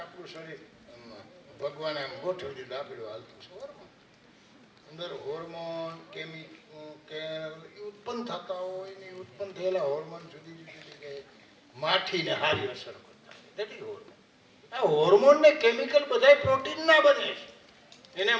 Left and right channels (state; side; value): identical; both; correlation 1.00